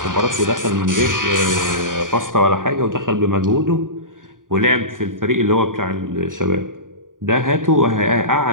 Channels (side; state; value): left; late; 0.89 ms